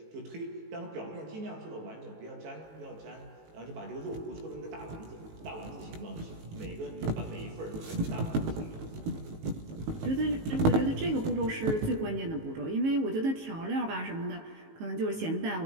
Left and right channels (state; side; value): late; left; 19 ms